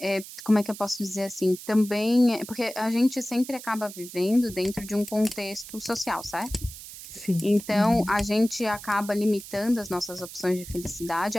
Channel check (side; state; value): right; noise; hiss, 14 dB below the sound